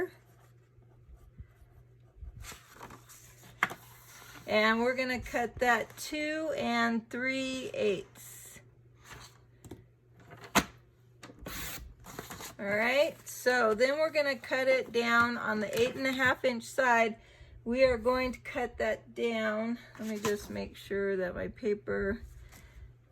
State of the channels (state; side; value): identical; both; correlation 1.00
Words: And we're going to cut that 2 3/8. All right, so then we're going to cut it down on the 8 1/2 inch side. We are going to cut that down. Let me just make sure that my paper,